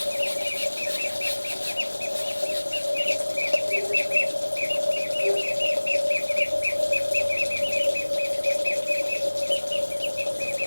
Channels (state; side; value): inverted; both; correlation -1.00